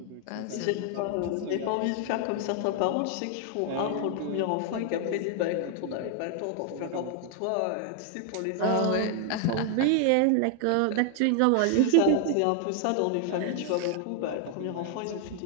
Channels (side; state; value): both; different; correlation 0.00